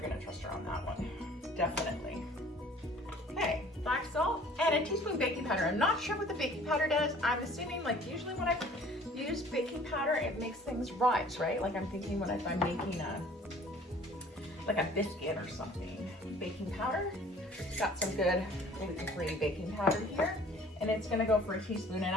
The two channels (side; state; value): both; normal; correlation 0.52